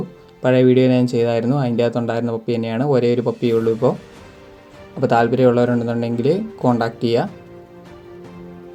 പഴയ വീഡിയോ ഞാൻ ചെയ്തായിരുന്നു, അതിൻ്റെ അകത്തുണ്ടായിരുന്ന പപ്പി തന്നെയാണ്. ഒരേ ഒരു പപ്പിയേ ഉള്ളൂ ഇപ്പോൾ. അപ്പോൾ താല്പര്യമുള്ളവരുണ്ടെന്നുണ്ടെങ്കിൽ കോൺടാക്ട് ചെയ്യുക.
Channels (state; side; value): identical; both; correlation 1.00